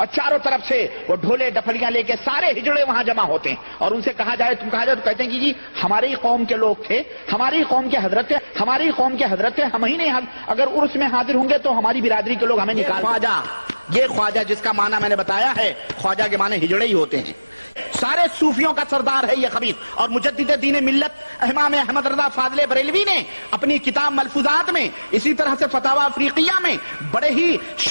چاروں طرف سے وہ ڈھولے ڈپڑیاں لے کے سارے ہجڑے وہاں جمع ہوتے ہیں. اور ان سے کہا جائے تو کہتے ہیں کہ جی ہماری قوم کے لوگ تھے، ہماری قوم کے حضرت تھے، ہم ہی نہیں، اگر عرس میں حاضر ہوں گے تو ہماری برادری کے لوگ ہمیں نکال. یہ خواجہ جس کا معنی میں نے بتایا ہے، خواجہ کے معنی ہجڑے ہی ہوتے ہیں. سارے صوفیوں کا سردار ہے یہ خبیث. اور مجدد دین ملت امام احمد رضا فاضل بریلوی نے اپنی کتاب ملفوظات میں، اسی طرح سے فتاوی افریقیہ میں بڑے ہی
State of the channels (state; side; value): inverted; both; correlation -1.00